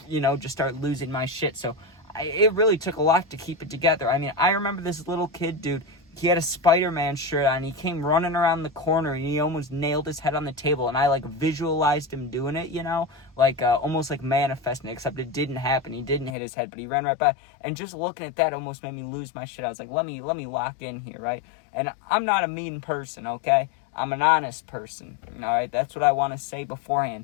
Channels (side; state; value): right; drops out; at 16.4 s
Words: you know, just start losing my shit. So it really took a lot to keep it together. I mean, I remember this little kid, dude. He had a Spider-Man shirt on. He came running around the corner, and he almost nailed his head on the table. And I like visualized him doing it, you know, like almost like manifesting it, except it didn't happen. He didn't hit his head, but he ran right by. And just looking at that almost made me lose my shit. I was like, let me lock in here, right? And I'm not a mean person, okay? I'm an honest person, all right? That's what I want to say